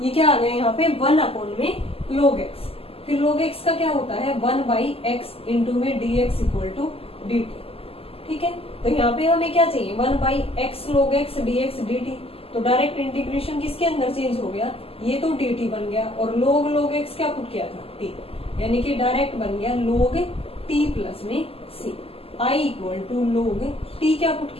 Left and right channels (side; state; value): right; late; 0.28 ms